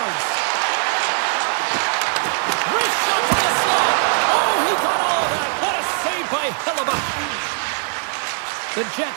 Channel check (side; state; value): left; silent; 58 dB below the other